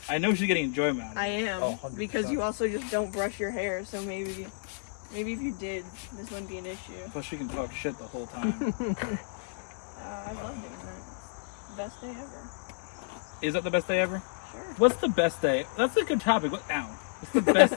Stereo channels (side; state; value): right; silent; 57 dB below the other